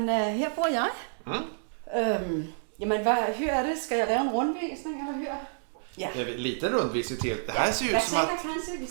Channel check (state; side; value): silent; left; digital silence